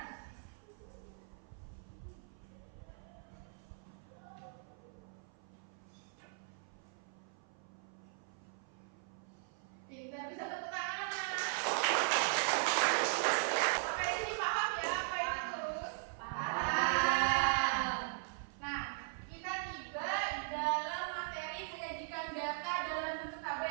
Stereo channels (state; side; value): silent; left; 52 dB below the other